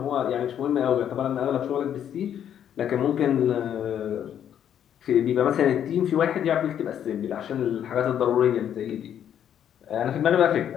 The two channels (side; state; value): right; quieter; 9.6 dB